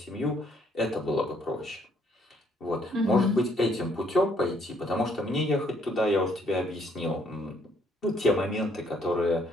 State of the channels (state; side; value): normal; both; correlation 0.67